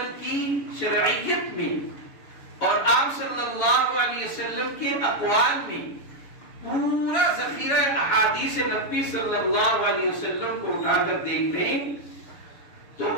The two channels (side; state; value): right; late; 6.9 ms